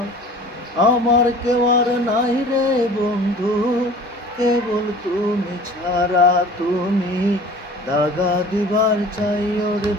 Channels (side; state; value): both; normal; correlation 0.44